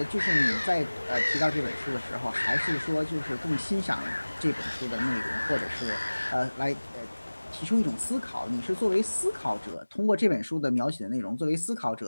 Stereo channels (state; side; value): inverted; both; correlation -1.00